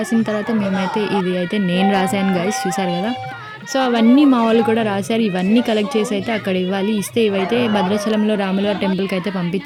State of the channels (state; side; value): identical; both; correlation 1.00